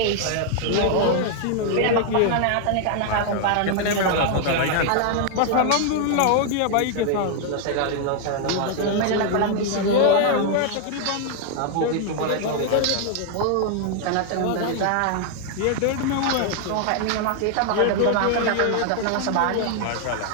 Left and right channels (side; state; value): both; different; correlation 0.00